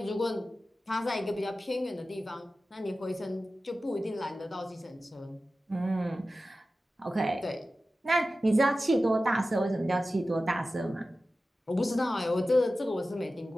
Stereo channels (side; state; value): both; normal; correlation 0.94